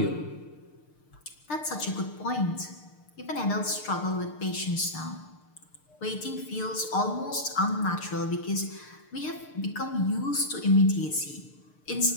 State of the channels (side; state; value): right; late; 6.7 ms